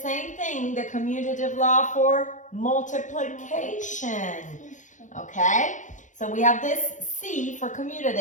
same thing, the commutative law for multiplication. Okay? So we have this C for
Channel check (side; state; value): right; late; 0.36 ms